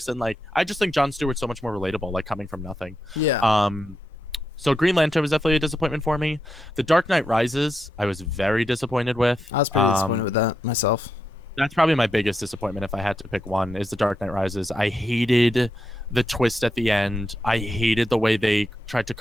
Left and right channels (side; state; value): both; normal; correlation 0.85